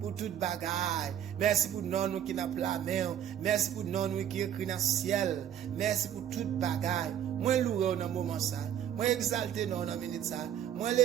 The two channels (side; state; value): left; quieter; 10.2 dB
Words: pour toute bagaille. Merci pour nous qui n'a pas la main. Merci pour nous qui écrit dans le ciel. Merci pour toute bagaille. Moi louer dans moment ça. Moi exalter non dans minute ça. Moi